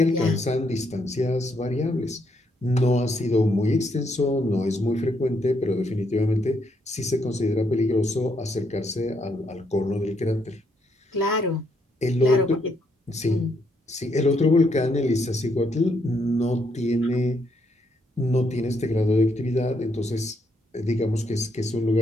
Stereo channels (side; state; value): both; normal; correlation 0.75